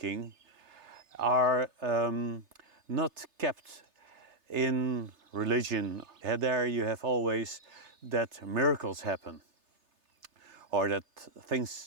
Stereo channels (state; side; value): late; left; 3.3 ms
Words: are not kept in religion. There you have always that miracles happen, or that